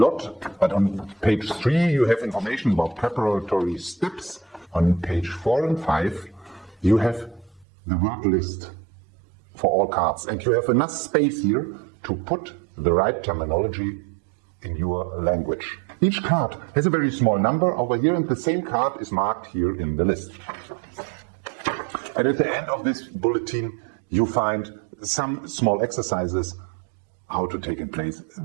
but on page 3 you have information about preparatory steps. On page 4 and 5 you have the word list for all cards, and you have enough space here to put the right terminology in your language. Each card has a very small number over here, and the same card is marked here in the list. And at the end of this bulletin, you find some small exercises how to take in place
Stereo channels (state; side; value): drops out; left; at 7.7 s